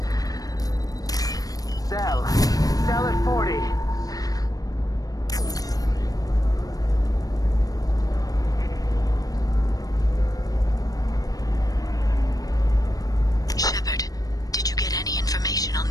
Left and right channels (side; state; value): right; late; 0.18 ms